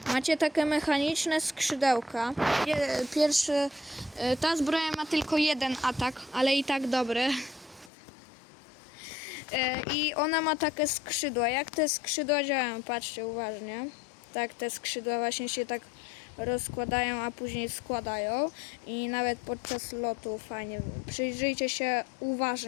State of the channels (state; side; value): drops out; right; at 7.9 s